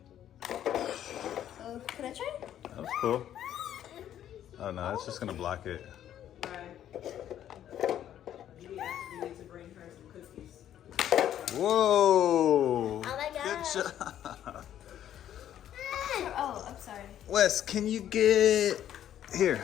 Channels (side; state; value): right; quieter; 10.9 dB